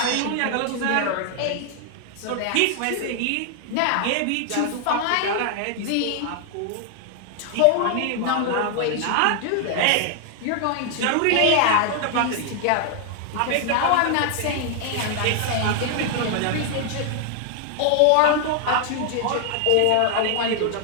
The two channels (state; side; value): different; both; correlation 0.00